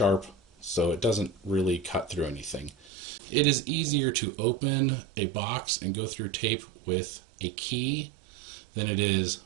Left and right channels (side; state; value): left; drops out; at 2.9 s